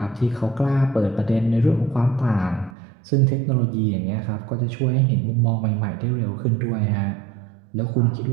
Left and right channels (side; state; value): left; drops out; at 2.7 s